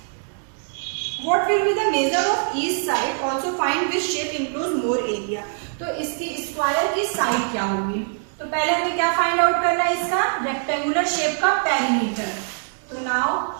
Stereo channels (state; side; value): silent; left; digital silence